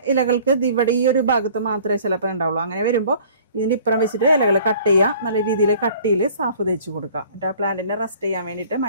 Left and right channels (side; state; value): both; inverted; correlation -0.51